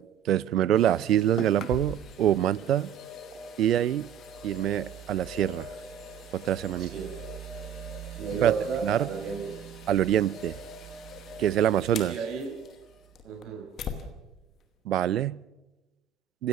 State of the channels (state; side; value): quieter; left; 9.5 dB